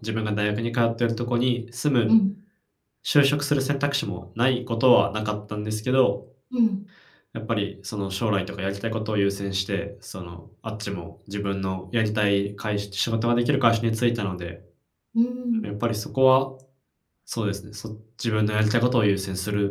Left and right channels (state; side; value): identical; both; correlation 1.00